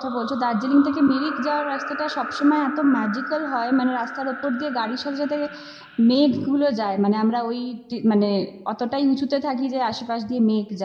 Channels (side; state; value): both; identical; correlation 1.00